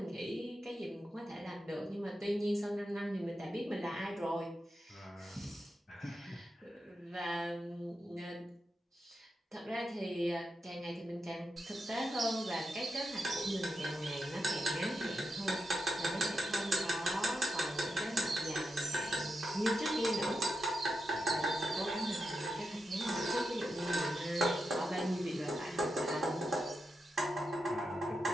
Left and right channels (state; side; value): normal; both; correlation 0.87